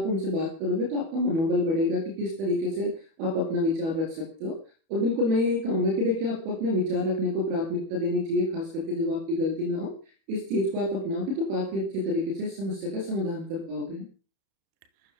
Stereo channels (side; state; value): left; late; 31 ms